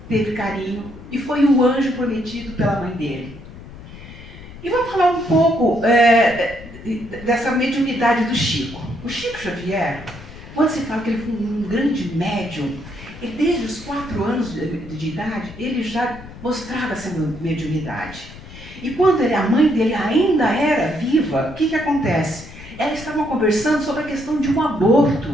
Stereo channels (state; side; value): noise; left; rumble, 16 dB below the sound